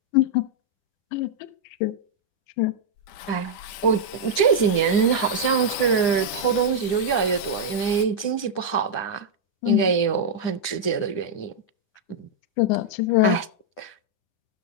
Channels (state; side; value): late; right; 10 ms